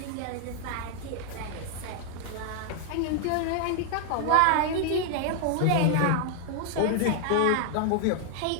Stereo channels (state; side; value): different; both; correlation 0.00